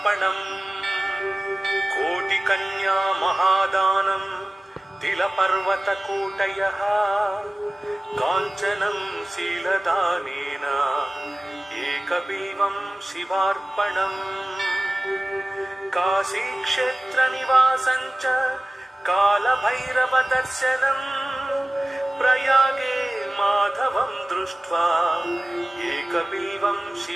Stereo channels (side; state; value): both; normal; correlation 0.97